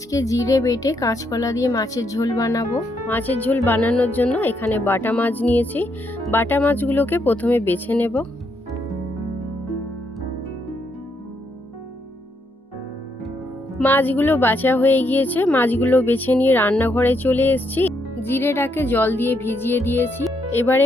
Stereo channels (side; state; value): both; normal; correlation 0.77